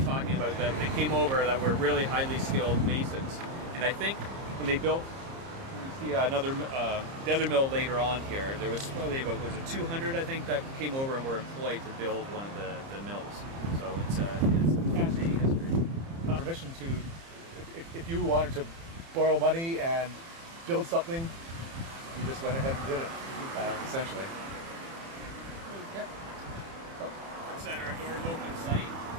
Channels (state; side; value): late; left; 30 ms